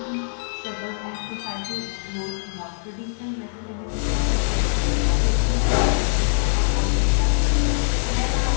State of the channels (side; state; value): right; silent; 57 dB below the other